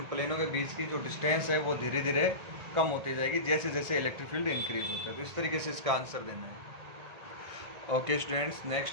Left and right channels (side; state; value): left; late; 1.8 ms